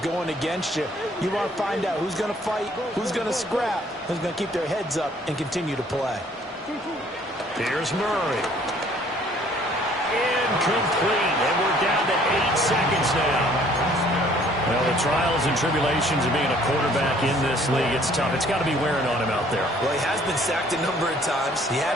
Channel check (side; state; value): both; normal; correlation 0.59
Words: against you. You want to find out who's going to fight, who's going to scrap, who's going to keep their heads up and continue to play. Here's Murray. Incomplete. And we're down to 8 seconds now. Well, the trials and tribulations of being a quarterback in this league, it's tough. It's got to be wearing on him out there. Well, he has been sacked a number of times. He had